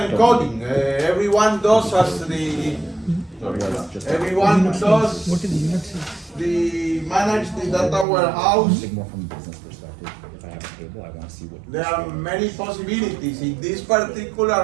Everyone does as the, everyone does What is unit sales? the manage the data warehouse. Think more from a business perspective. If I have a table, I want to see what. There are many possibilities. In this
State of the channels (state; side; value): drops out; left; at 8.1 s